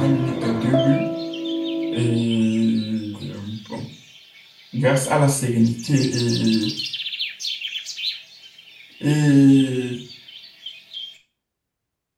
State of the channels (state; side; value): identical; both; correlation 1.00